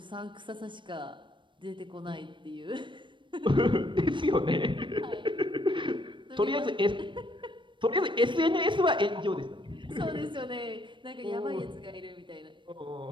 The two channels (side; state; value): left; late; 0.23 ms